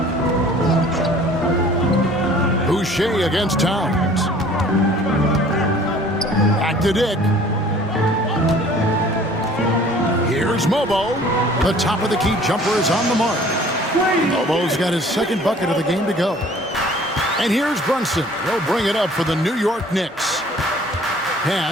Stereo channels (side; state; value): both; normal; correlation 0.51